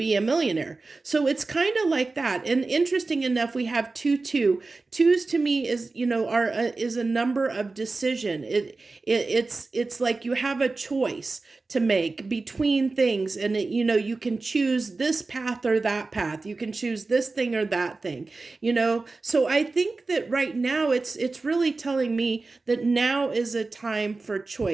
a millionaire. So it's kind of like that. And interesting enough, we have 2 twos to me is, are is a number of decision. It's like you have a choice to make between things, and you can choose this path or that path. You can choose this thing or that thing. So I think that right now it's really telling me that now is a time for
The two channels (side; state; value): left; quieter; 3.7 dB